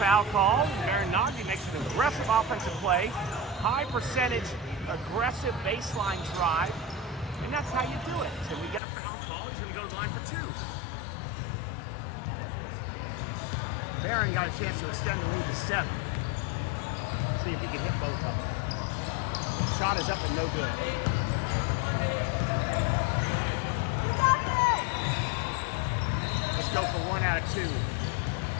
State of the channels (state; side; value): drops out; right; at 8.8 s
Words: called. Naghdi makes an aggressive offensive play. High percentage, aggressive baseline drive. And that's how you do it. So we get a foul call. He's going to go to the line for two. Barron got a chance to extend the lead to 7. See if he can hit both of them. Shot is up and no good. Let's go for 1 out of 2.